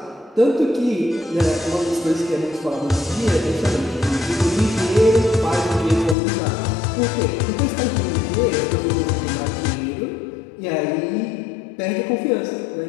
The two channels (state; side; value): drops out; right; at 6.2 s